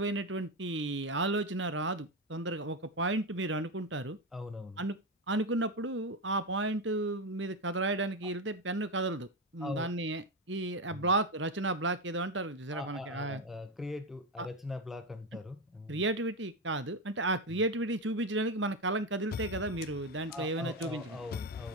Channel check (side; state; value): both; normal; correlation 0.13